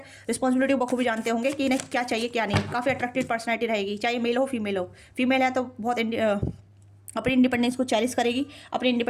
रिस्पॉन्सिबिलिटी बखूबी जानते होंगे कि इन्हें क्या चाहिए क्या नहीं। काफ़ी अट्रैक्टिव पर्सनैलिटी रहेगी, चाहे मेल हो फीमेल हो। फीमेल है तो बहुत अपनी इंडिपेंडेंस को चैलेंज करेगी, अपनी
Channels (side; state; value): both; identical; correlation 1.00